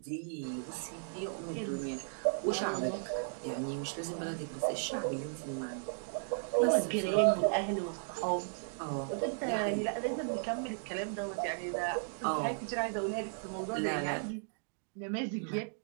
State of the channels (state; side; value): silent; left; digital silence